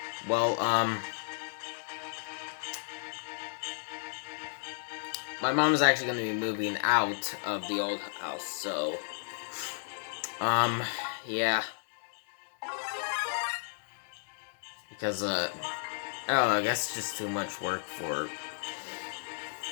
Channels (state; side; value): silent; right; digital silence